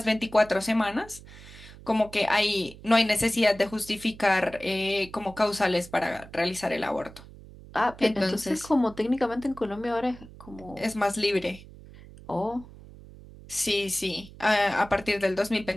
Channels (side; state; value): right; noise; hum, 18 dB below the sound